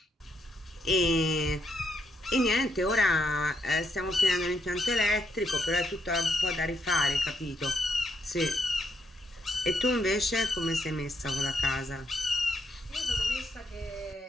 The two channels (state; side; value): normal; both; correlation 0.78